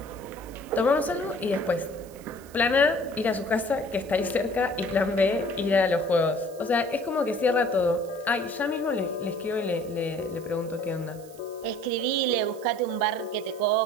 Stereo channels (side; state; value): right; noise; hiss, 23 dB below the sound